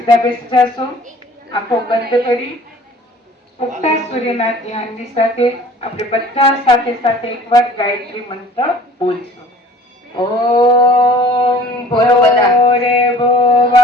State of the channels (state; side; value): normal; both; correlation 0.49